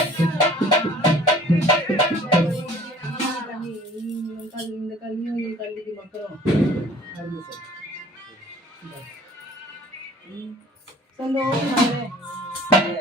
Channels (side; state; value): both; normal; correlation 0.50